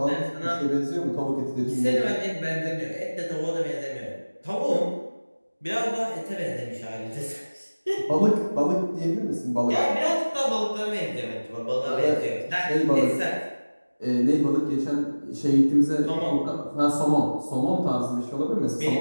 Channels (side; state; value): both; inverted; correlation -1.00